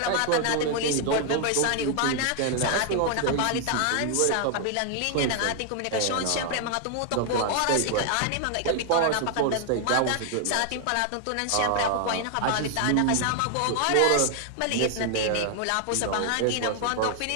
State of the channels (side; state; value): both; different; correlation 0.00